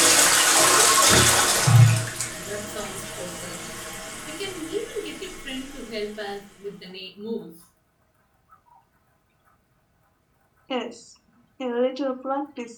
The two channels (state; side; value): identical; both; correlation 1.00